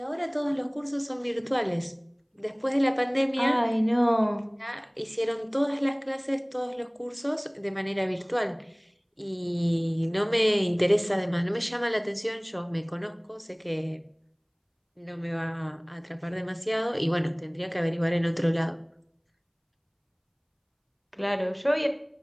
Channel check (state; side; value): identical; both; correlation 1.00